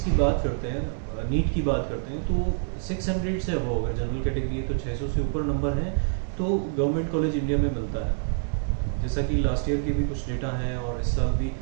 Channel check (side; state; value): left; silent; 61 dB below the other